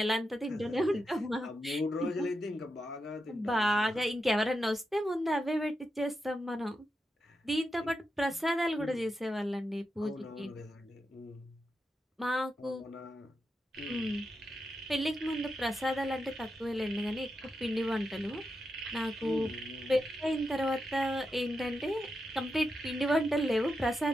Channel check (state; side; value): normal; both; correlation 0.87